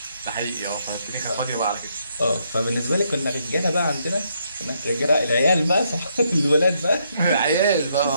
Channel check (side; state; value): both; inverted; correlation -0.75